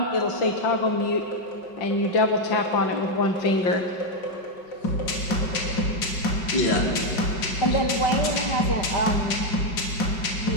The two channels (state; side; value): late; right; 5.3 ms